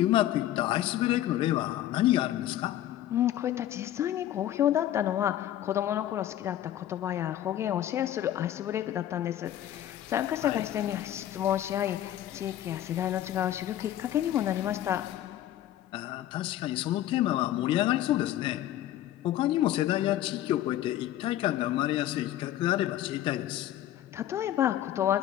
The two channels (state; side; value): quieter; right; 12.5 dB